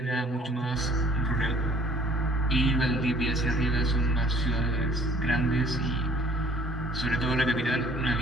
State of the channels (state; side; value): normal; both; correlation 0.55